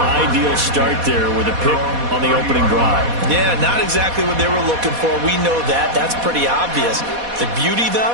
start there with a pick on the opening drive. Yeah, not exactly what they were looking for. We know that. That's pretty obvious. The beauty,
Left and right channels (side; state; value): left; late; 4.2 ms